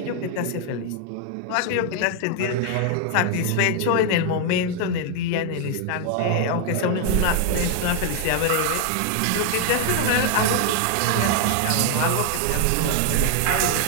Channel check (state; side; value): different; both; correlation 0.00